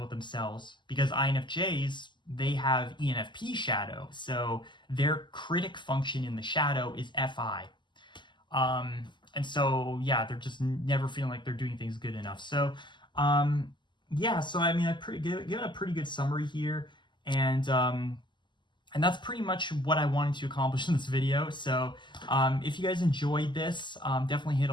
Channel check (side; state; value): right; late; 0.22 ms